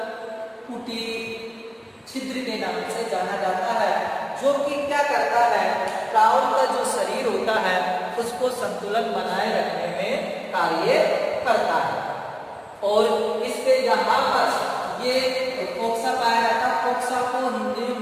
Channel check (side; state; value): both; identical; correlation 1.00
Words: कुटी छिद्र के नाम से जाना जाता है, जो कि क्या करता है? प्राउड का जो शरीर होता है उसको संतुलन बनाए रखने में कार्य करता है। और इसके यहाँ पर ये कोक्सा पाया जाता है। कोक्सा को हिंदी में